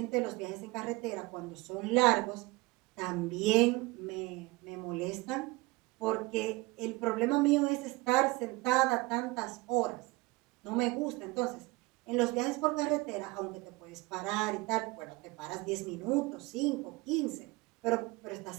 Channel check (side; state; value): left; quieter; 22.8 dB